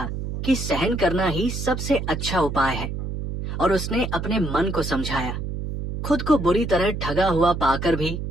कि सहन करना ही सबसे अच्छा उपाय है, और उसने अपने मन को समझाया। खुद को बुरी तरह ठगा हुआ पाकर भी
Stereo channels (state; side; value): noise; right; hum, 5 dB below the sound